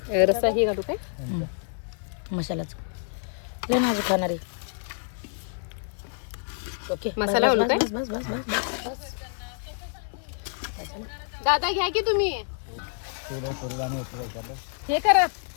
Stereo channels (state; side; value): silent; right; 60 dB below the other